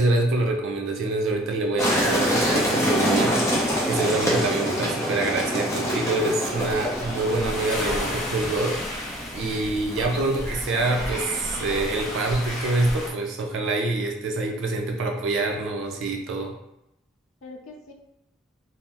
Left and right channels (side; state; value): both; normal; correlation 0.50